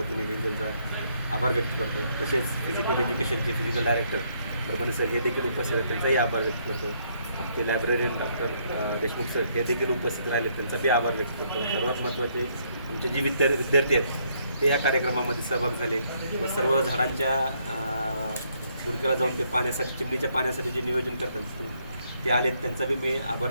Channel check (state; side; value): inverted; both; correlation -0.71